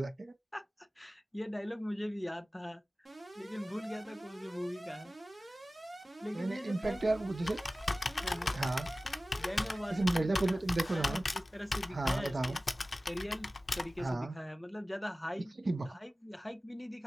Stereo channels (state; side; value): normal; both; correlation 0.97